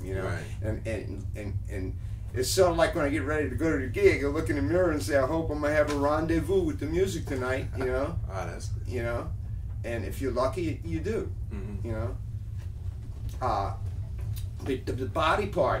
you know. Right. And it's sort of like when I get ready to go to the gig, I look in the mirror and say, I hope I'm going to have a rendezvous with the music tonight, you know. Oh, that's good. You know, and if you're lucky, you do, you know. The body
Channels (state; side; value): identical; both; correlation 1.00